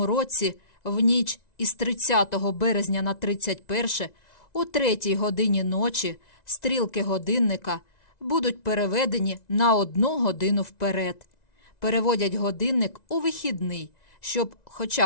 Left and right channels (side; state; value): right; late; 1.9 ms